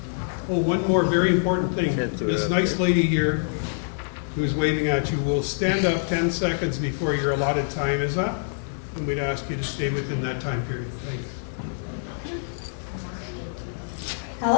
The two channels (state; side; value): silent; right; 61 dB below the other